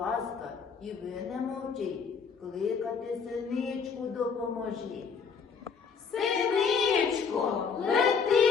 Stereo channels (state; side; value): quieter; right; 5.9 dB